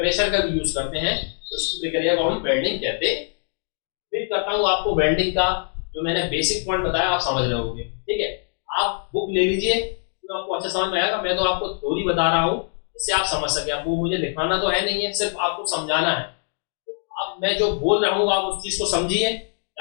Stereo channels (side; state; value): right; silent; 61 dB below the other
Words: का भी यूज करते हैं, तो उस प्रक्रिया को हम वेल्डिंग कहते हैं। उम्मीद करता हूँ आपको वेल्डिंग का जो मैंने बेसिक पॉइंट बताया आप समझ रहे होंगे, ठीक है। आप बुक ले लीजिए तो आपको अच्छा समझ में आएगा, मैं तो आपको थ्योरी बता रहा हूँ इससे आप समझ सके, आपको मुझे दिखाना तो है नहीं है, सिर्फ आपको समझाना है। तो अब मैं जो बोल रहा हूँ आप उस चीज को समझिए,